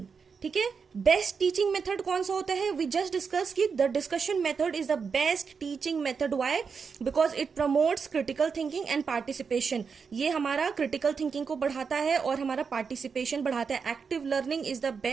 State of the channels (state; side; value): quieter; left; 5.7 dB